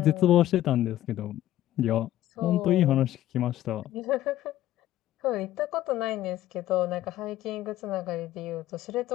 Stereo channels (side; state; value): right; quieter; 13.6 dB